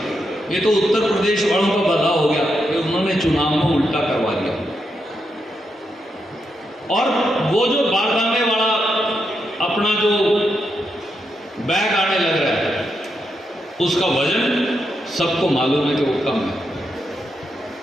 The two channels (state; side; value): normal; both; correlation 0.83